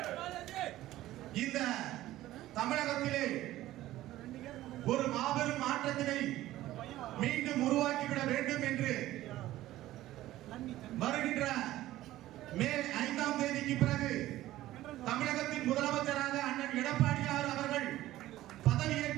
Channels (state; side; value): quieter; left; 15.3 dB